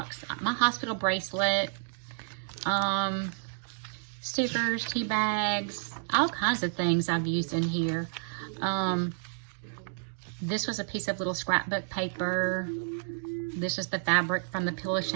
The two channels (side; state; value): left; silent; digital silence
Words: My hospital bracelet. Stickers, tea bags, all kinds of things I've used in here. This was a piece of little scrapbook paper. This is the fabric from the Pillow